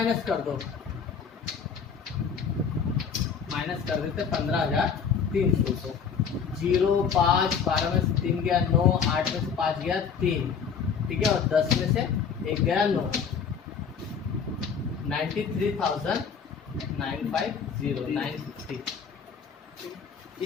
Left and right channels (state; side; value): quieter; right; 6.5 dB